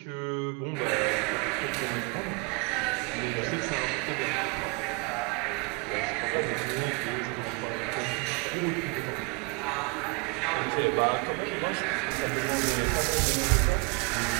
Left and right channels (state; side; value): quieter; left; 30.6 dB